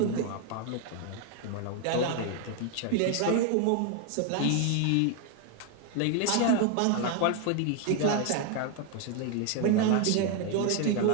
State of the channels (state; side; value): different; both; correlation 0.01